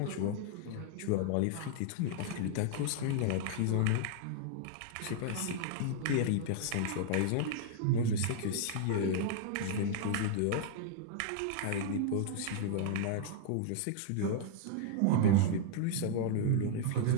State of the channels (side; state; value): both; different; correlation -0.01